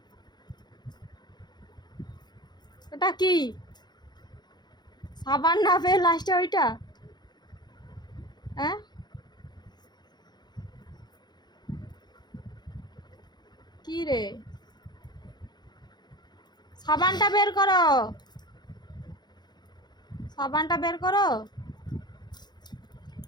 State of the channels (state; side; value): late; right; 0.21 ms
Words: ওটা কি? সাবান না পেয়ে লাস্টে ওইটা? হ্যাঁ, কি রে? সাবানটা বের করো, সাবানটা বের করো।